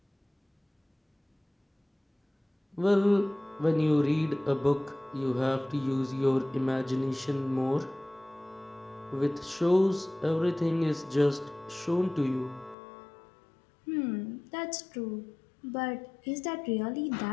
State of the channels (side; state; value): right; drops out; at 12.8 s